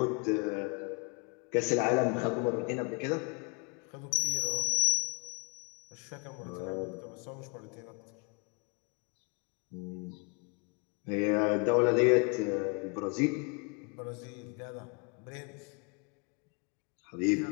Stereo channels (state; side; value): quieter; right; 32.6 dB